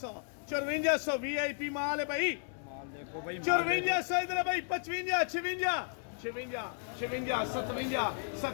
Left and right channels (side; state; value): right; silent; 55 dB below the other